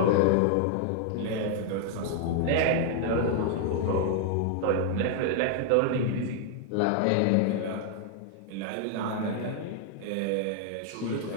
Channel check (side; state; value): both; different; correlation 0.00